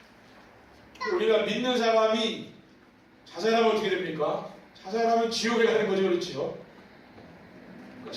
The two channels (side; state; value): both; identical; correlation 1.00